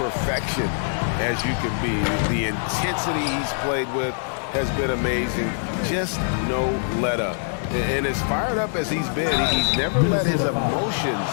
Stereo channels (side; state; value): right; silent; digital silence